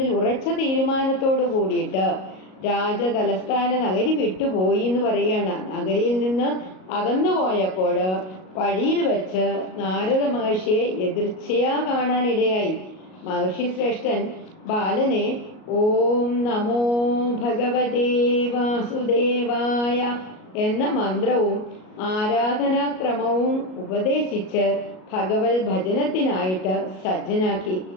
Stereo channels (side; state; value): right; late; 38 ms